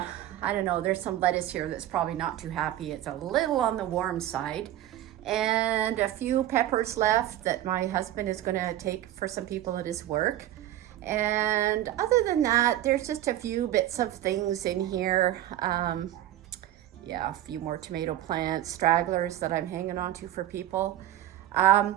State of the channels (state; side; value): quieter; left; 13.1 dB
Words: don't know, there's some lettuce here that's probably not too happy. It's a little on the warm side. And a few peppers left that my husband is going to take for some people at his work. And other than that, there's just a few bits of things in here. Yeah, a few more tomato plants, stragglers that I'm hanging on to for people. I